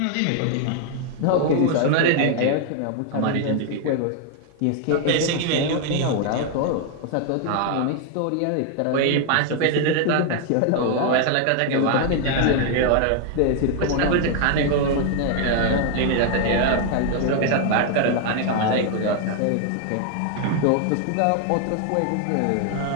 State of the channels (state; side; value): different; both; correlation 0.00